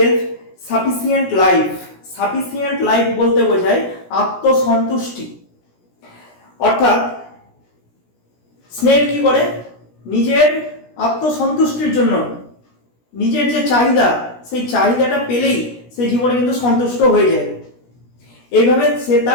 sufficient life. Sufficient life বলতে বোঝায় আত্মসন্তুষ্টি। অর্থাৎ স্নেল কি করে, নিজের আত্মসন্তুষ্টির জন্য নিজের যে চাহিদা, সেই চাহিদাটা পেলেই সে জীবনে কিন্তু সন্তুষ্ট হয়ে যায়। এইভাবে সে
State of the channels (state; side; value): late; right; 16 ms